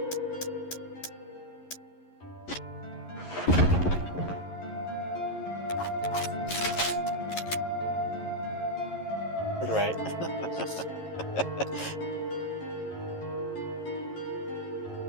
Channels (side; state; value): right; late; 11 ms